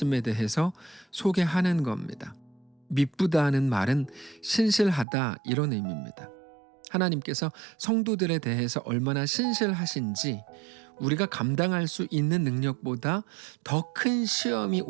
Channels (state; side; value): drops out; left; at 5.1 s